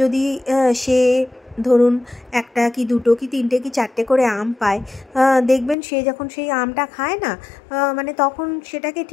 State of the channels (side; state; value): right; drops out; at 5.8 s